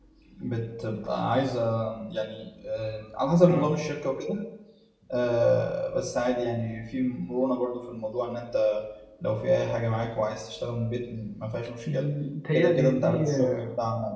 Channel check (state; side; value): identical; both; correlation 1.00